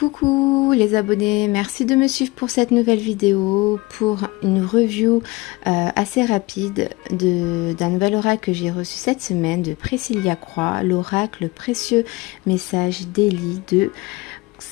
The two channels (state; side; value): quieter; right; 22.3 dB